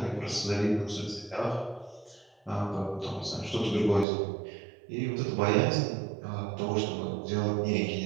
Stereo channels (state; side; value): drops out; left; at 4.0 s